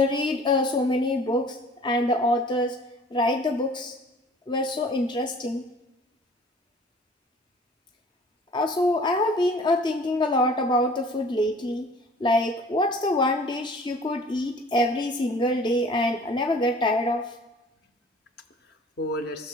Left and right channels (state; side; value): normal; both; correlation 0.49